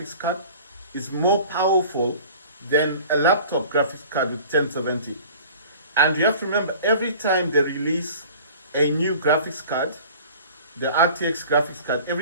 card is more powerful than a laptop graphics card with 1070. And you have to remember, every time they release a new graphics card, the RTX graphics card,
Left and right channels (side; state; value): both; inverted; correlation -0.45